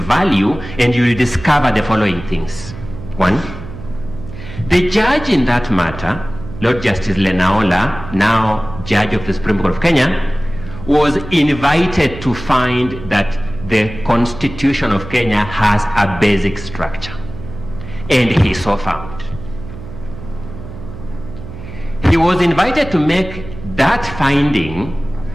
and you will discover the following things. One, the judge in that matter, Lord Justice Lenaola, now Judge of the Supreme Court of Kenya, was invited to find that the Constitution of Kenya has a basic structure. And he so found. He was invited to make that finding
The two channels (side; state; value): right; noise; hum, 13 dB below the sound